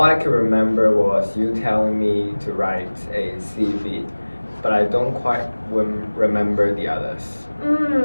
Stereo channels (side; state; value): both; inverted; correlation -1.00